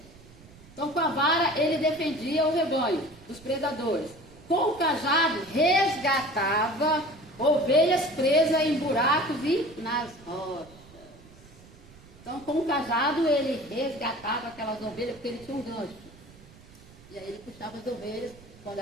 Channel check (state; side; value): noise; right; rumble, 22 dB below the sound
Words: Então, com a vara, ele defendia o rebanho dos predadores. Com o cajado, resgatava ovelhas presas em buracos e nas rochas. Então, com o cajado, ele resgatava aquelas ovelhas, porque ele tinha um gancho. E aí ele puxava as ovelhas quando